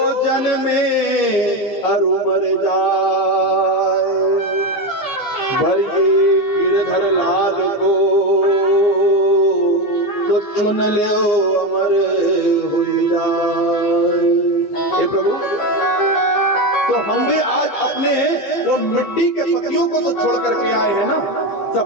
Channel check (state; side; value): late; right; 14 ms